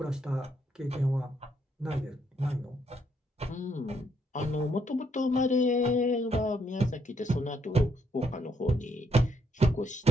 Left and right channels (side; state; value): both; normal; correlation 0.74